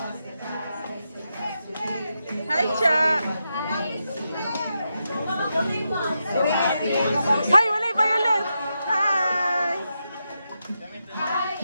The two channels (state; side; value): inverted; both; correlation -0.86